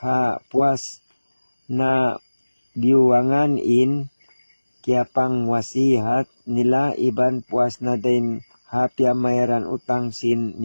ha puas na biwangan in kaya pang wasihat nila, iban puas na din hapya mayran utang sin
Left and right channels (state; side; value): inverted; both; correlation -1.00